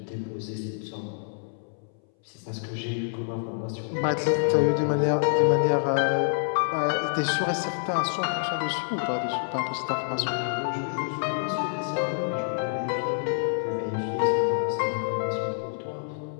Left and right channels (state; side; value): silent; right; 60 dB below the other